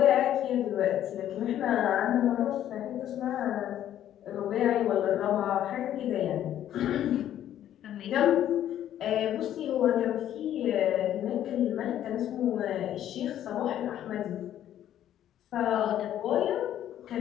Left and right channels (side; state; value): right; quieter; 11.4 dB